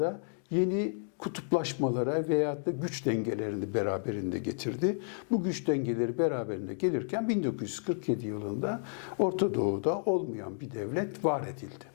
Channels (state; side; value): silent; right; digital silence